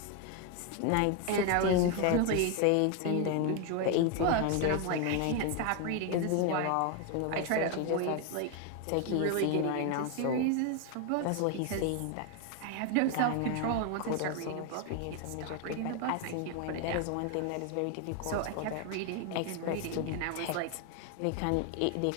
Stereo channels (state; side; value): different; both; correlation 0.01